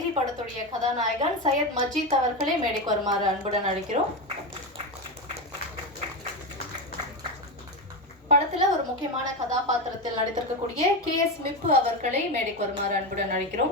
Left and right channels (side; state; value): both; normal; correlation 0.15